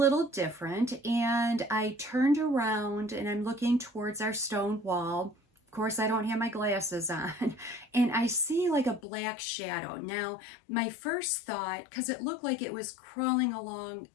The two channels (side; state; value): right; drops out; at 9.0 s